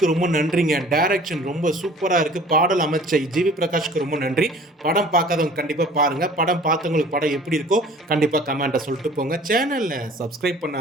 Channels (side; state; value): both; normal; correlation 0.49